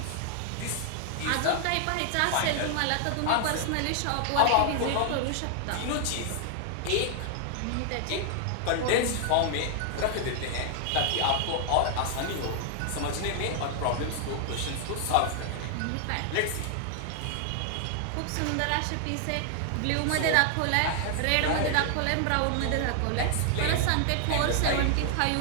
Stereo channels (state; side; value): different; both; correlation 0.00